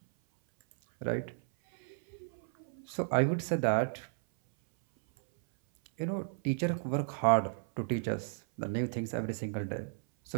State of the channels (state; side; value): silent; left; 56 dB below the other